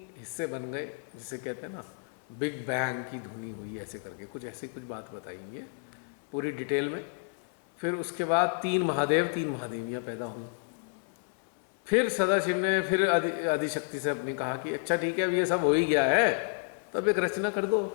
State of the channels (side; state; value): right; silent; digital silence